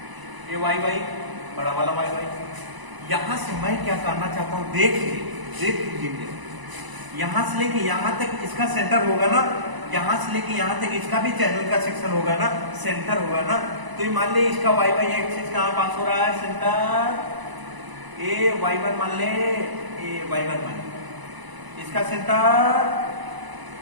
ये वाई वाई बड़ा वाला वाई वाई। यहां से मैं क्या करना चाहता हूं, देख लीजिए, यहां से लेके यहां तक इसका सेंटर होगा ना, यहां से लेके यहां तक इसका भी चैनल का सेक्शन होगा ना, सेंटर होगा ना। तो ये मान ले इसका वाई वाई एक्सिस कहां पास हो रहा है, सेंटर ए y1 मान ले, ए y1 मान ले, इसका सेंटर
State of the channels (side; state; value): left; late; 1.0 ms